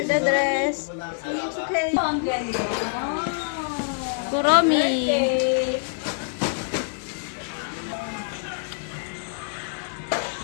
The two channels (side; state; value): right; silent; digital silence